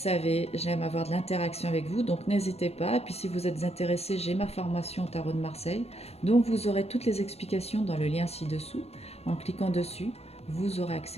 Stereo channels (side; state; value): right; late; 0.30 ms